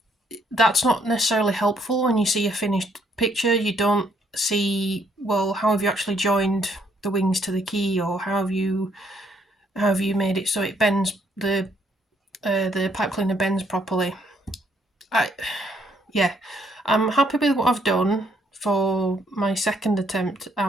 that's not necessarily helpful when you see a finished picture. You don't see, well, how have you actually joined the wings to the key, or how have you made it so it bends, the pipe cleaner bends properly. I'm happy with what I've done for my second attempt at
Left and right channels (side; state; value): both; normal; correlation 0.69